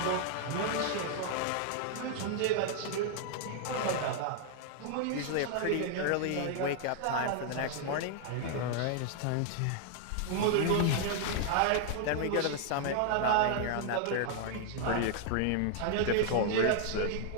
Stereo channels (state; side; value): different; both; correlation 0.00